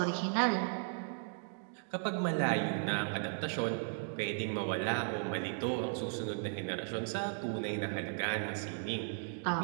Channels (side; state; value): left; silent; digital silence